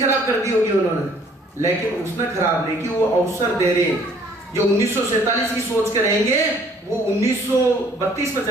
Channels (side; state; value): both; normal; correlation 0.59